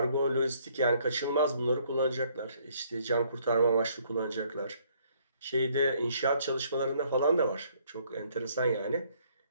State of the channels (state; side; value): inverted; both; correlation -0.66